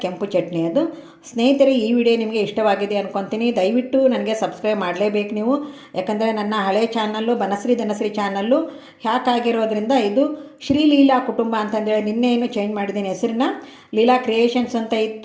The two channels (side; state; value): both; identical; correlation 1.00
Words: ಕೆಂಪು ಚಟ್ನಿ ಅದು. ಸ್ನೇಹಿತರೆ, ಈ ವಿಡಿಯೋ ನಿಮಗೆ ಇಷ್ಟವಾಗಿದೆ ಅಂದ್ಕೊತೀನಿ. ದಯವಿಟ್ಟು ನನಗೆ ಸಬ್ಸ್ಕ್ರೈಬ್ ಮಾಡಲೇಬೇಕು ನೀವು. ಯಾಕಂದರೆ ನನ್ನ ಹಳೆ channel Banashree Dhanashree channel hack ಆಗಿರೋದ್ರಿಂದ ಇದು ಶ್ರೀ ಲೀಲಾ ಕುಟುಂಬ ಅಂತಂದೇಳಿ ನಿನ್ನೆ ಏನು ಚೇಂಜ್ ಮಾಡಿದ್ದೀನಿ ಹೆಸರನ್ನ. ಲೀಲಾ ಕ್ರಿಯೇಷನ್ಸ್ ಅಂತ